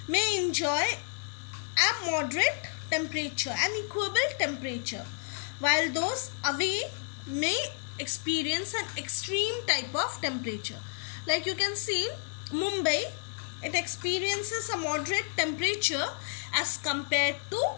may enjoy a moderate temperature, an equable temperature, while those away may experience an extreme type of temperature. Like you can see, Mumbai, it experiences a moderate temperature as compared to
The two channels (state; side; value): silent; right; 57 dB below the other